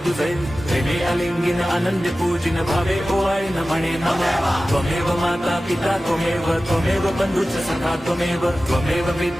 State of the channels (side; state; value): both; normal; correlation 0.95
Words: तुझे प्रेमे अलिंगिन आनंद पूजिन भावे ओवाय न म्हणे नमः त्वमेव माता पिता त्वमेव बंधुच सखा त्वमेव